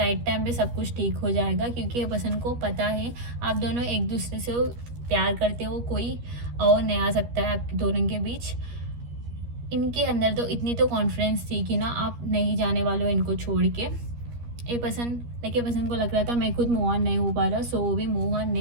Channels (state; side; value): late; left; 13 ms